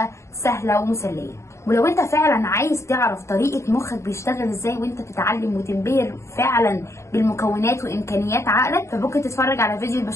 سهلة ومسلية. ولو انت فعلا عايز تعرف طريقة مخك بيشتغل ازاي وانت بتتعلم وتنبهر فعلا بالمكونات وامكانيات عقلك، فممكن تتفرج على فيديو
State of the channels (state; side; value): late; right; 0.14 ms